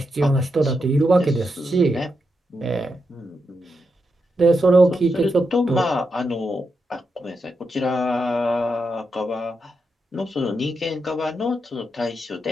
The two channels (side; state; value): both; normal; correlation 0.84